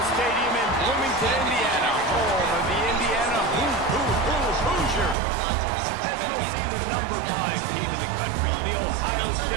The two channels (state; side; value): drops out; left; at 5.2 s